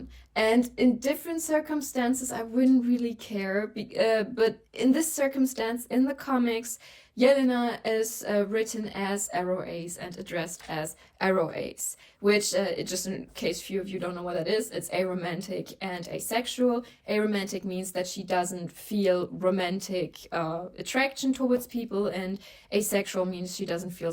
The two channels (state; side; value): identical; both; correlation 1.00